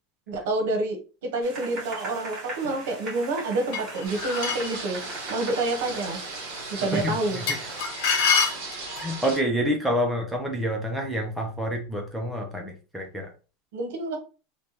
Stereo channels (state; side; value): normal; both; correlation 0.29